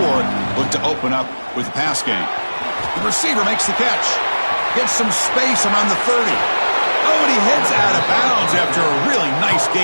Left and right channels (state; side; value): inverted; both; correlation -1.00